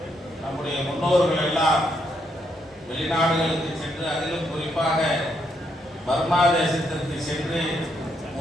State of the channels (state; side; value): normal; both; correlation 0.76